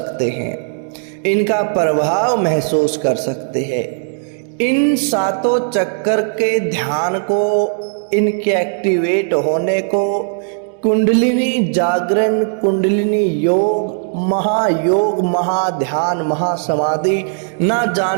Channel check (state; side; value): silent; left; digital silence